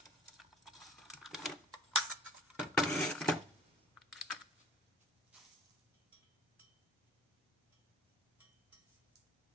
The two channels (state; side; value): normal; both; correlation 0.50